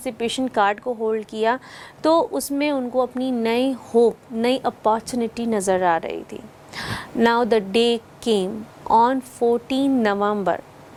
card को hold किया, तो उसमें उनको अपनी नई होप, नई अपॉर्चुनिटी नज़र आ रही थी. Now the day came on 14 November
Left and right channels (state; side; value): identical; both; correlation 1.00